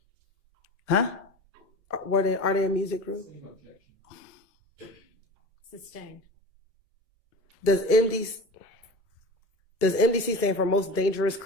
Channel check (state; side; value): normal; both; correlation 0.34